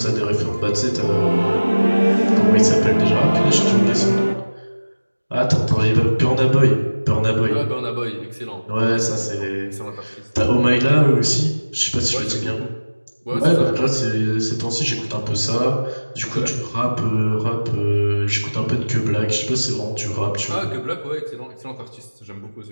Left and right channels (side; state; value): both; inverted; correlation -1.00